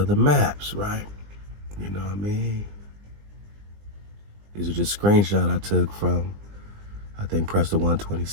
the maps, right? You know what I mean? These are just screenshots I took from, I think, Prester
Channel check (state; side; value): late; left; 20 ms